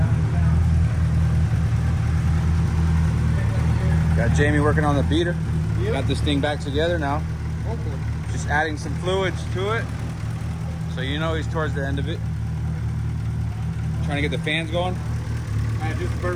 Got Jamie working on the beater. Got this thing back together now. Hopefully. Just adding some fluids to it. So you know he's towards the end of it. Trying to get the fans going. I just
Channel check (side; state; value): both; identical; correlation 1.00